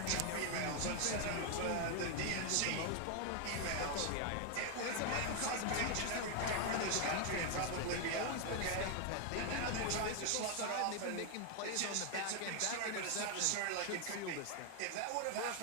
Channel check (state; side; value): different; both; correlation 0.01